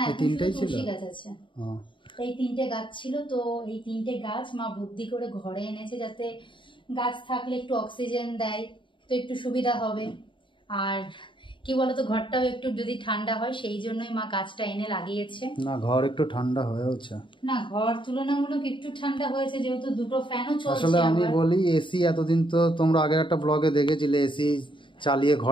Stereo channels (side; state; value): right; late; 0.24 ms